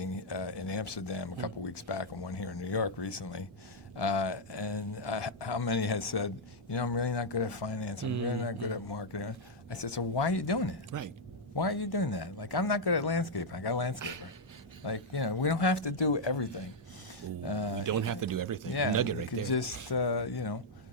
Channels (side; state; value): both; normal; correlation -0.03